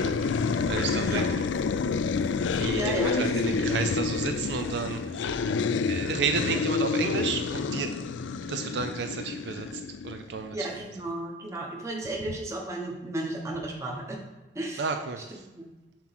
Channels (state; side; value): normal; both; correlation 0.32